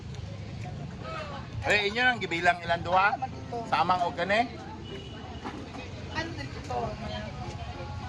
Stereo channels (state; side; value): identical; both; correlation 1.00